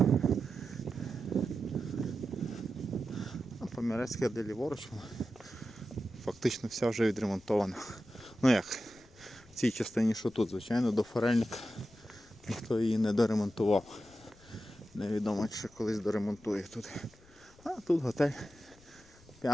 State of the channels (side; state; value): left; noise; rumble, 26 dB below the sound